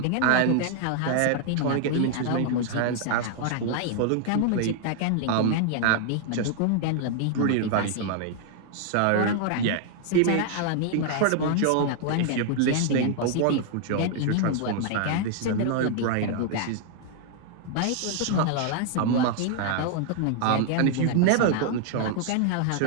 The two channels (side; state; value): both; different; correlation 0.00